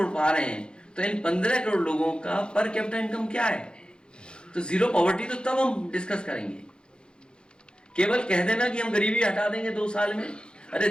पा रहे हैं तो इन 15 करोड़ लोगों का पर कैपिटा इनकम क्या है? तो जीरो पॉवर्टी तो तब हम डिस्कस करेंगे। केवल कह देना कि हम गरीबी हटा देंगे 2 साल में, अरे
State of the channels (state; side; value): late; right; 0.050 ms